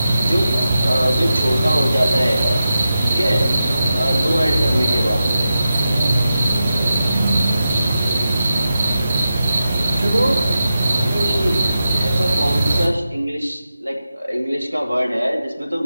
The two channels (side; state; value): both; inverted; correlation -0.90